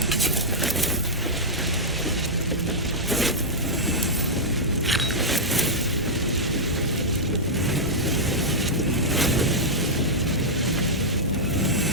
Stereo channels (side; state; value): both; normal; correlation -0.07